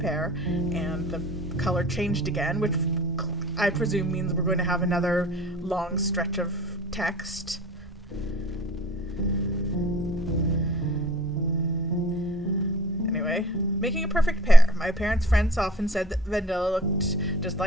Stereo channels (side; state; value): both; normal; correlation 0.49